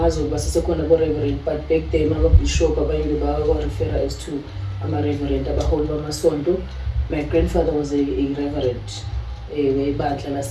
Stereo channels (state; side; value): identical; both; correlation 1.00